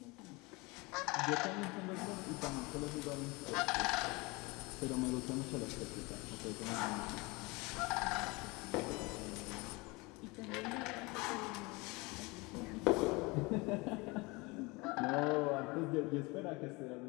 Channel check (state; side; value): quieter; right; 25.3 dB